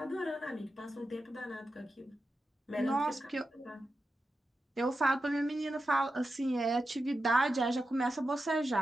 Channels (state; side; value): normal; both; correlation 0.90